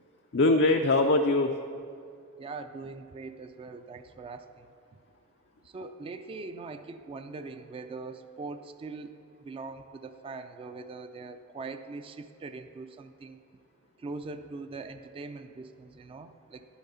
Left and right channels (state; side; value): normal; both; correlation 0.00